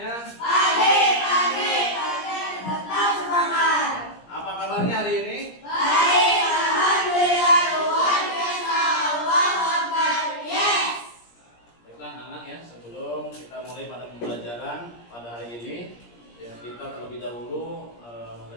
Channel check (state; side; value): late; right; 17 ms